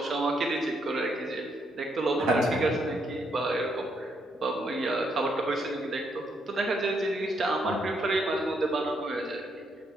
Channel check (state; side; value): normal; both; correlation 0.76